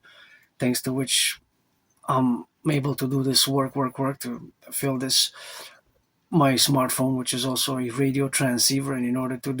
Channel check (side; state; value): both; identical; correlation 1.00